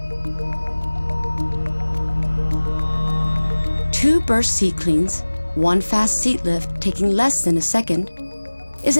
2 Burst Seat Cleans, 1 fast seat lift taking less than a second, is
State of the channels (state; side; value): inverted; both; correlation -1.00